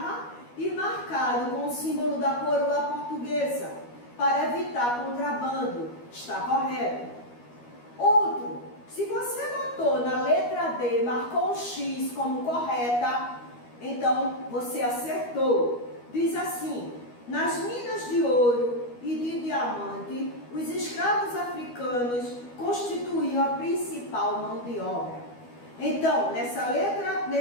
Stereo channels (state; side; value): late; right; 12 ms